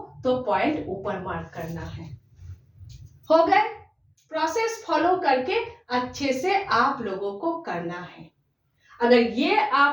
तो पॉइंट ऊपर मार्क करना है। हो गए, प्रोसेस फॉलो करके अच्छे से आप लोगों को करना है। अगर ये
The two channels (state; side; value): identical; both; correlation 1.00